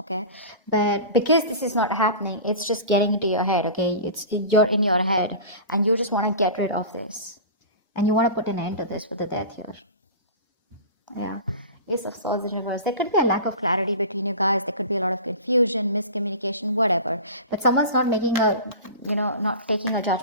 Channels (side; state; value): both; inverted; correlation -0.33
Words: But because this is not happening, it's just getting into your head, okay? You're in your head, and you just want to get rid of this, and you want to put an end to this with the Death here. Yeah, Ace of Swords in reverse. There could be a lack of clarity between you guys. There could be a lot of confusion, miscommunication, whatever. But someone's not making not taking a